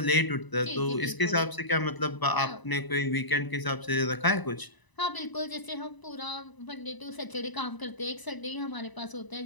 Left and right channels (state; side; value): late; right; 1.0 ms